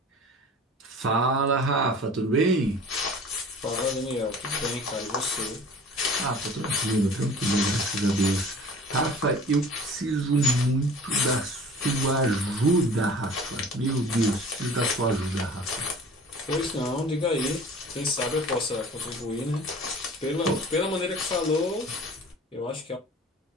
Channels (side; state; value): both; normal; correlation 0.44